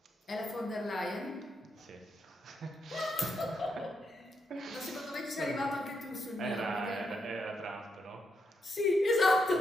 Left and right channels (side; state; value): both; normal; correlation 0.81